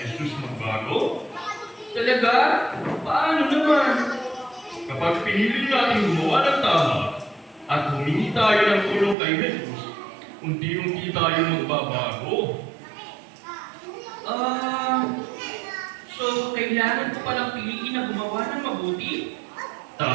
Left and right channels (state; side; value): drops out; left; at 9.2 s